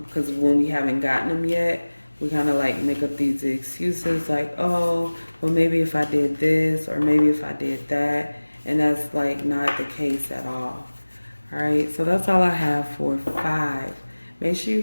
Because when we haven't gotten them yet, we kind of like make up these excuses like, oh, well, maybe if I did this or maybe if I did that. And that's like not the case at all. All right, so that's all I have for 5. Make sure you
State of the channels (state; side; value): inverted; both; correlation -1.00